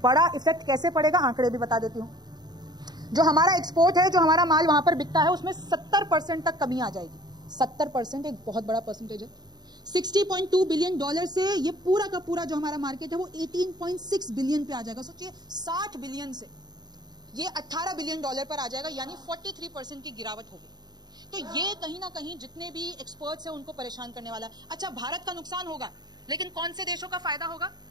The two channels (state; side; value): late; left; 0.20 ms